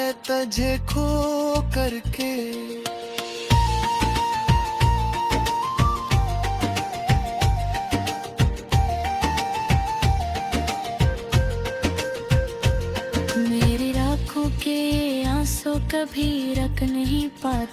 तुझे खो करके। मेरी आँखों के आंसू कभी रख रोक नहीं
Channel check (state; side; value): identical; both; correlation 1.00